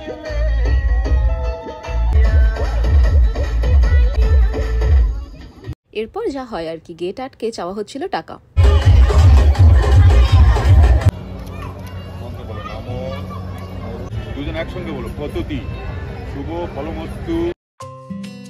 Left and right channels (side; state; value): both; identical; correlation 1.00